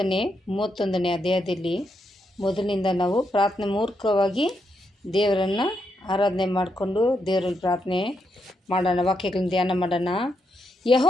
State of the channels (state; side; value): normal; both; correlation 0.81